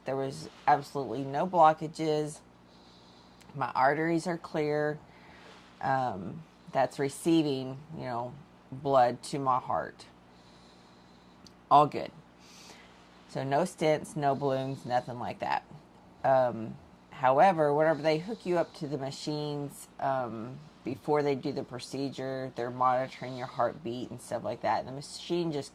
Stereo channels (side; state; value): both; identical; correlation 1.00